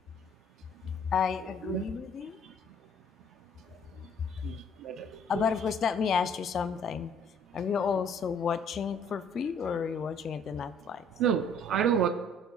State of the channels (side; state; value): both; normal; correlation 0.58